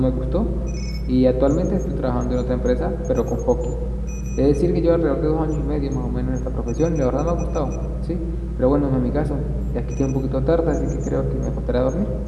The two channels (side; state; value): both; identical; correlation 1.00